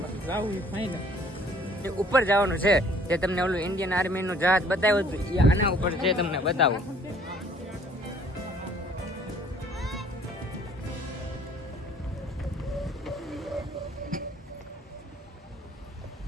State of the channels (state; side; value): normal; both; correlation 0.57